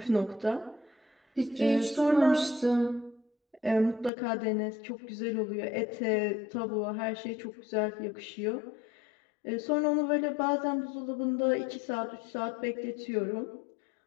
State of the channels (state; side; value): drops out; right; at 4.1 s